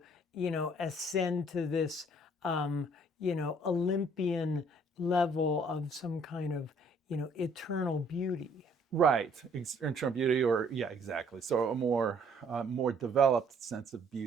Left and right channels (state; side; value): normal; both; correlation 0.61